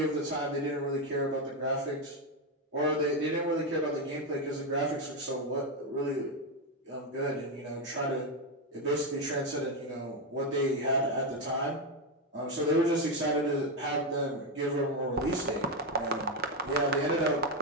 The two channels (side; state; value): both; normal; correlation 0.06